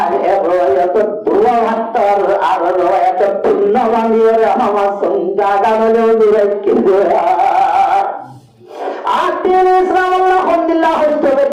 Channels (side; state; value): both; identical; correlation 1.00